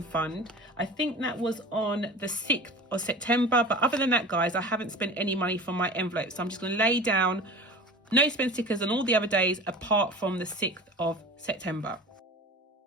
fund. I think that was on the 6th of September, but other than that, guys, I haven't spent any money from my envelope. So I'm just going to lay down no spend stickers on all the other days apart from the 6th of September.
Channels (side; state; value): both; normal; correlation 0.36